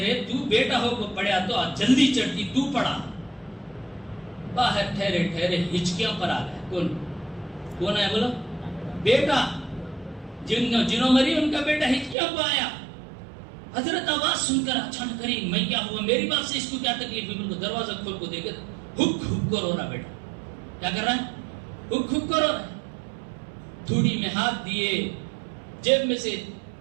تو بیٹا ہو کو پڑھیا تو جلدی چڑھتی، تو پڑھا۔ باہر ٹھہرے ٹھہرے ہچکیاں پر آ گیا۔ کون ہے بولو؟ بیٹا، جنہوں مری ان کا بیٹا ہچکیاں پر آیا۔ حضرت آواز سن کر اچانک کری میں کیا ہوا، میری بات سے اس کو کیا تکلیف ہے؟ بالکل دروازہ کھول کو دیکھے ہک ہک کو رو رہا، بیٹا کیا کر رہا ہے؟ ہک ہک کو رو رہا ہے۔ تھوڑی میں ہاتھ دیے، جیب میں سے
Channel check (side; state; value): left; drops out; at 12.2 s